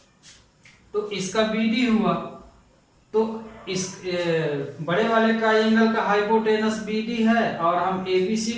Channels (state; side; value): identical; both; correlation 1.00